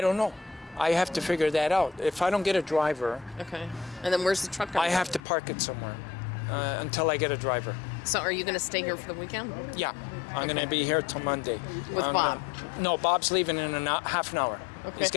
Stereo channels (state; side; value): drops out; right; at 5.2 s